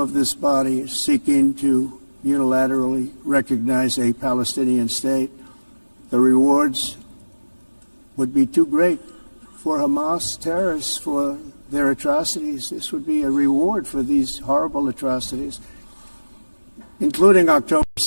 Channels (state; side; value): inverted; both; correlation -1.00